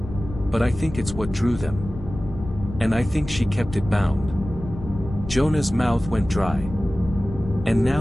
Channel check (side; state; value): left; noise; rumble, 11 dB below the sound